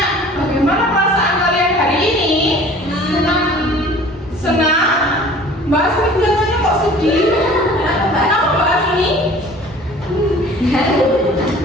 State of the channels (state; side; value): normal; both; correlation 0.47